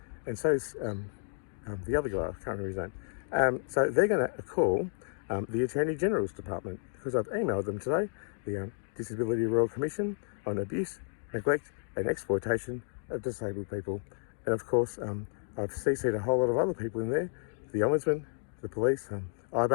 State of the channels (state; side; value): silent; right; digital silence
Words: And so is the other guy, I can't remember his name. So they're going to call the Attorney General's Department, because I've emailed them today, the Disability Royal Commission on abuse, neglect and exploitation of disabled people. And of course, I've CC'd a whole lot of other people in there, the Ombudsman, the police,